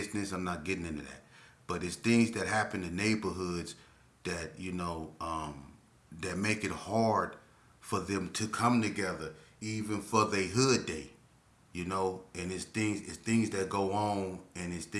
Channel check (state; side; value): identical; both; correlation 1.00